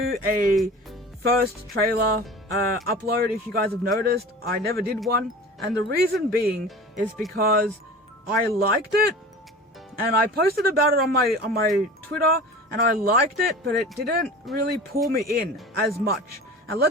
a first trailer upload, if you guys have noticed. I never did one, and the reason being is because I liked it, and I posted about it on my Twitter, and I liked it, but it didn't really pull me in as much. And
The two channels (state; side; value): normal; both; correlation 0.37